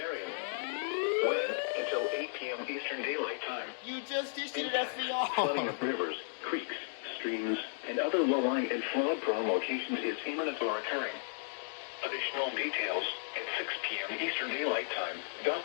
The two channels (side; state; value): right; silent; digital silence